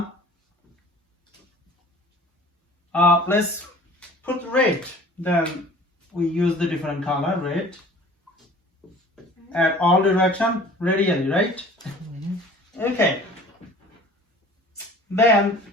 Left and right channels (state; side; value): normal; both; correlation 0.46